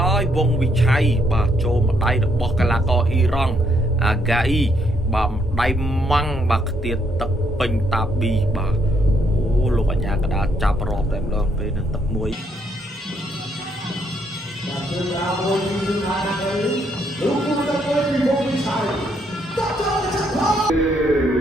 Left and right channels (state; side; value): normal; both; correlation 0.73